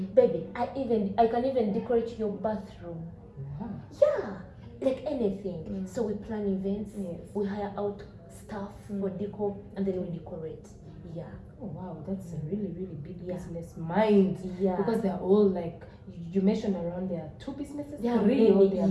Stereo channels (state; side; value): identical; both; correlation 1.00